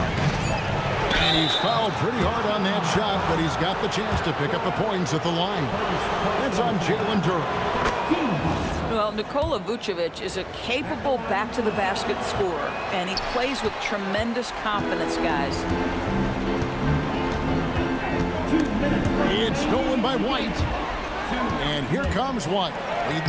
And he's fouled pretty hard on that shot, but he's got the chance to pick up the points at the line. That's on Jalen Durham. Well, Nikola Vucevic is a capable back-to-the-basket scorer, and he plays with tremendous confidence, guys. It's stolen by White. And here comes White,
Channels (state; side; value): identical; both; correlation 1.00